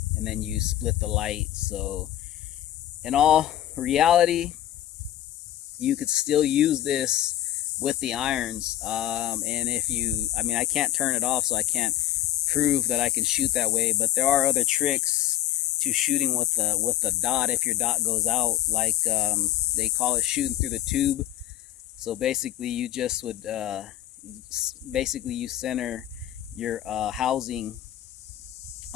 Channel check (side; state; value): right; quieter; 12.9 dB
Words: and then you split the light. So in all reality, you could still use this with the irons. And if you, I mean, I can't turn it off, so I can't prove that I can shoot that way, but there are other tricks to shooting with the dot if your dot goes out, like they call it shooting through the tube. So basically you just would basically you center your housing